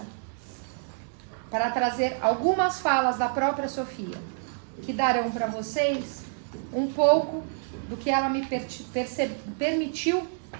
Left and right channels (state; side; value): silent; left; digital silence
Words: para trazer algumas falas da própria Sofia, que darão para vocês um pouco do que ela me permitiu